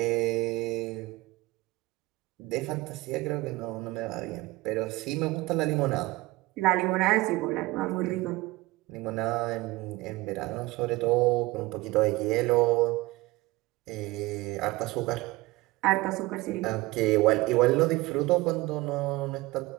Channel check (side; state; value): left; quieter; 20.6 dB